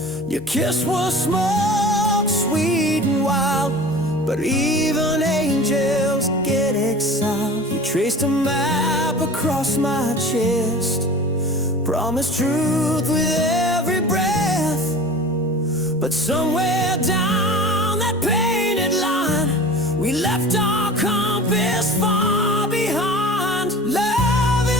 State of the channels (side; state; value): both; normal; correlation 0.39